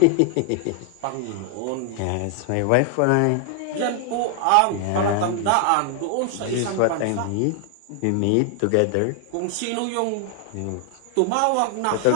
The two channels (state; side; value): different; both; correlation 0.00